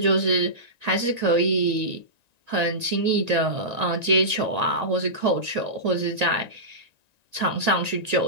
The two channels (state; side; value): late; left; 1.9 ms